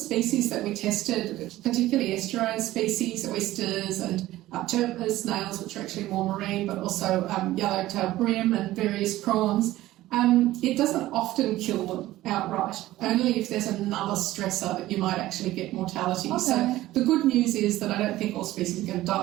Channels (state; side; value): quieter; left; 15.9 dB